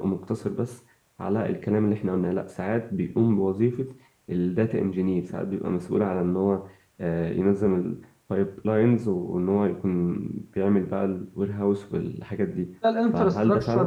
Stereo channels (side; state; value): both; identical; correlation 1.00